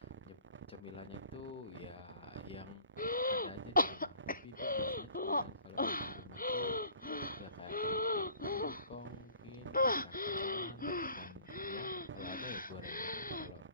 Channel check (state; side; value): inverted; both; correlation -0.51